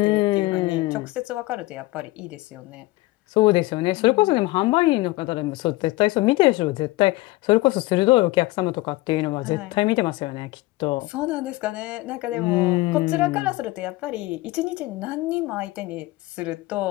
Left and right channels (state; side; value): quieter; right; 20.1 dB